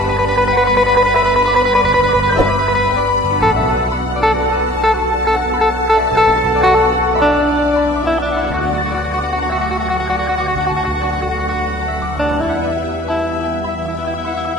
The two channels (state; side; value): normal; both; correlation 0.53